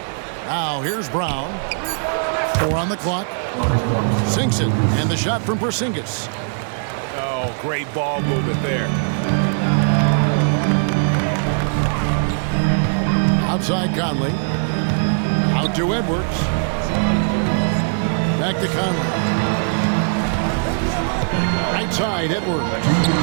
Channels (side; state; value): left; silent; 65 dB below the other